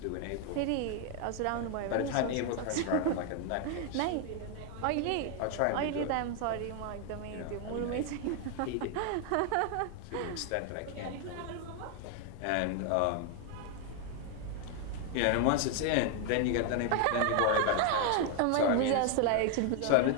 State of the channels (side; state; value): both; different; correlation 0.00